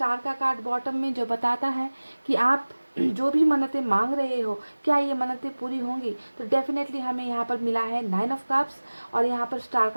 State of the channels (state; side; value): inverted; both; correlation -1.00